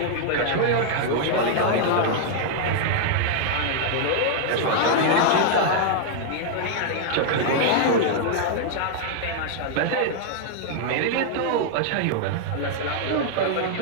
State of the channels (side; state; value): both; different; correlation -0.01